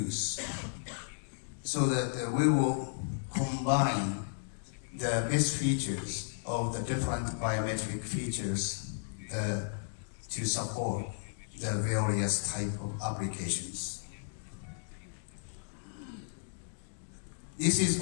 so that we will combine the best features of the different biometric features to support the various type of applications. This is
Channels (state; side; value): silent; right; digital silence